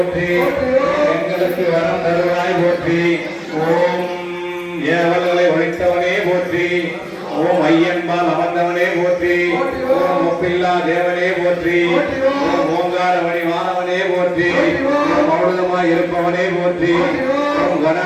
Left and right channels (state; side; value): identical; both; correlation 1.00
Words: எங்களுக்கு வரம் தருவாய் போற்றி ஓம் ஏவல்களை ஒழித்தவனே போற்றி ஓம் ஐயன்பால் அமர்ந்தவனே போற்றி ஓம் ஒப்பில்லா தேவனே போற்றி ஓம் ஓங்காரமணி மாணவனே போற்றி மௌனமாய் இருப்பவனே போற்றி ஓம் கண